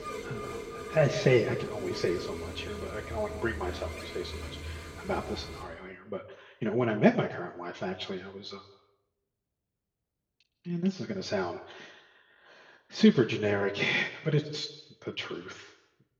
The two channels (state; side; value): identical; both; correlation 1.00